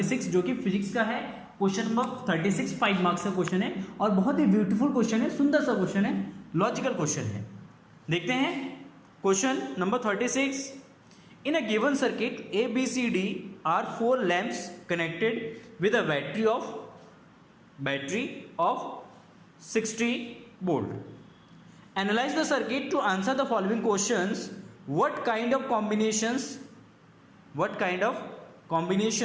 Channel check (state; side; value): identical; both; correlation 1.00